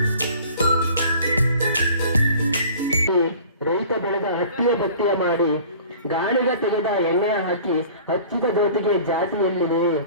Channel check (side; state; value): both; inverted; correlation -0.46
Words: ರೈತ ಬೆಳೆದ ಹಟ್ಟಿಯ ಪಟ್ಟಿಯ ಮಾಡಿ ಗಾಳಿಗ ತೆಗೆದ ಎಣ್ಣೆ ಹಾಕಿ ಹಚ್ಚಿದ ಜ್ಯೋತಿಗೆ ಜಾತಿ ಎಲ್ಲಿದೆ